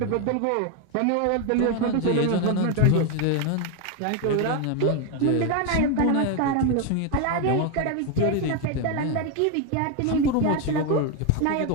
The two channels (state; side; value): different; both; correlation 0.01